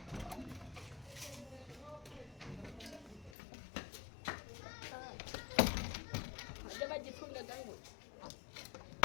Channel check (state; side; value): drops out; right; at 3.4 s